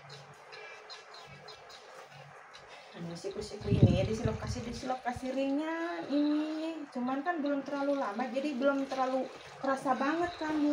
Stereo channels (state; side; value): identical; both; correlation 1.00